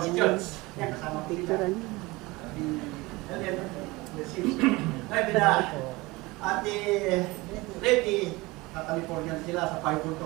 Church. Yan, kasama ko dito. Ate Lady, sa California sila, sa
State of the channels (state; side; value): quieter; left; 22.3 dB